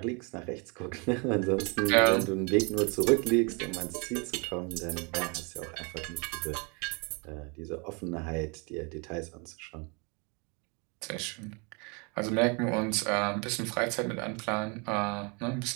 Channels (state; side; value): quieter; left; 32.5 dB